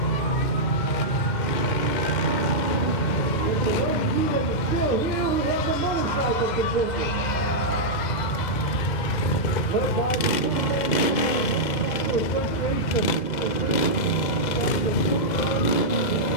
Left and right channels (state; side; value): late; right; 2.1 ms